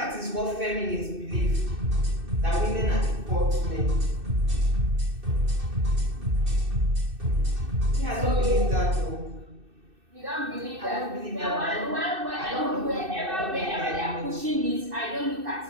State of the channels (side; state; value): left; late; 2.6 ms